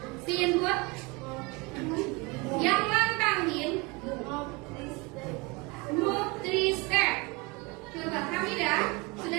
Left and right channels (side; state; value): left; quieter; 26.5 dB